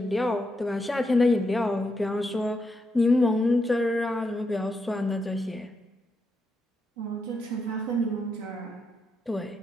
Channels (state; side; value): normal; both; correlation 0.83